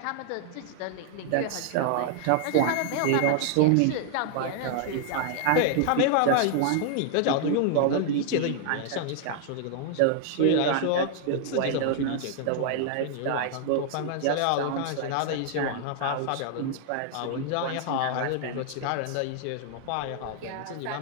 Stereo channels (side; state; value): both; different; correlation -0.01